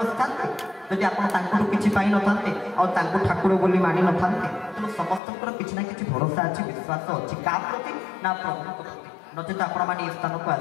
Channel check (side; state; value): right; drops out; at 5.2 s